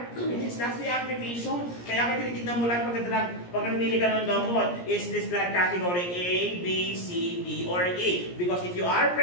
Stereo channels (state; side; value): late; right; 17 ms